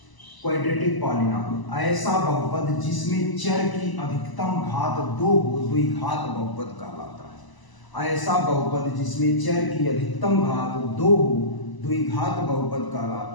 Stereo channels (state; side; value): late; right; 1.0 ms